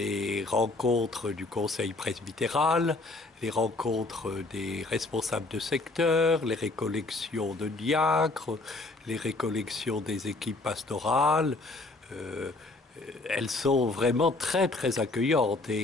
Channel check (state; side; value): quieter; right; 3.2 dB